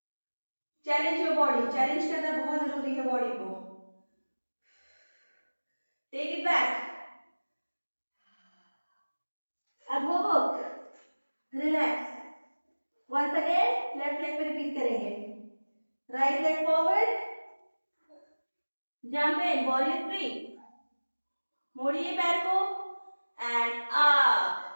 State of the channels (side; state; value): both; inverted; correlation -1.00